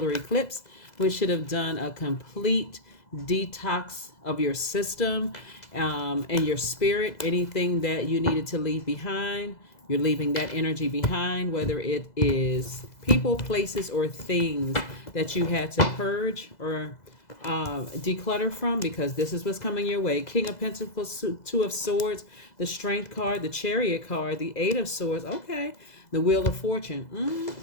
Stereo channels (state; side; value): late; right; 2.0 ms